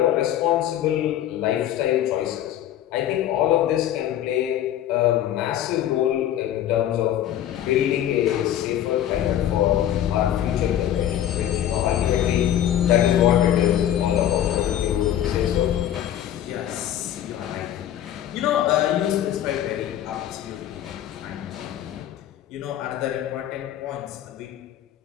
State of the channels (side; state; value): right; quieter; 11.2 dB